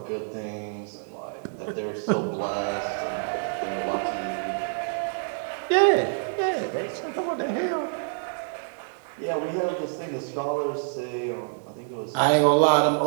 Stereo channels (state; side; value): silent; left; digital silence